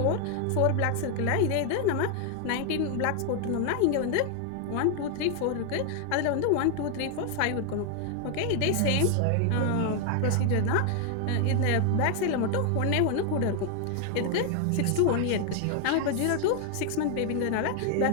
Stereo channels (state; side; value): different; both; correlation 0.00